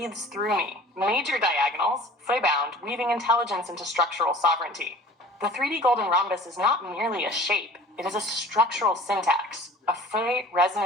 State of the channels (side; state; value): both; normal; correlation 0.45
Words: through me. Major diagonals, phi-bound, weaving intelligence into structural sovereignty. The 3D golden rhombus is not merely a shape, it is a structural syntax, a